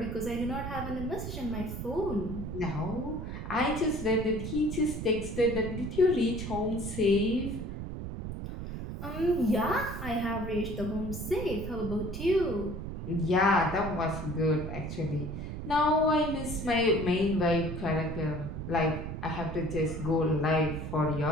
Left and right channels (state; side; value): noise; right; rumble, 6 dB below the sound